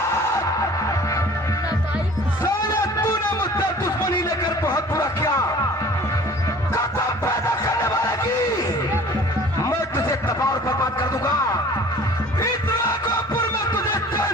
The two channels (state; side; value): normal; both; correlation 0.47